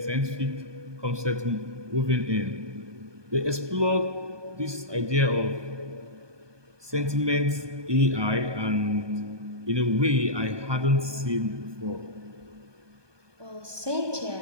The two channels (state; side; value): late; left; 1.2 ms